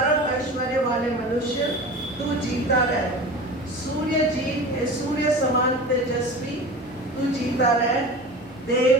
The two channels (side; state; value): both; normal; correlation 0.33